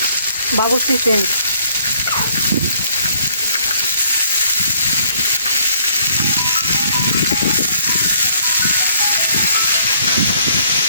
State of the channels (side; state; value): both; inverted; correlation -0.64